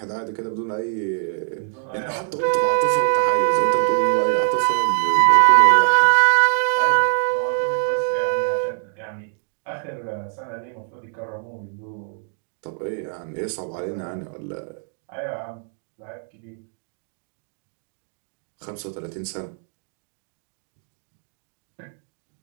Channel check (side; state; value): left; silent; 55 dB below the other